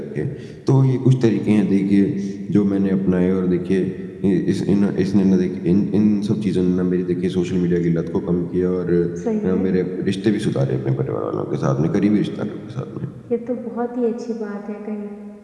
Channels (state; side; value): identical; both; correlation 1.00